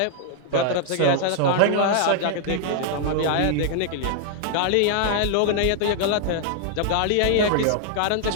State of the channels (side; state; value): both; different; correlation -0.01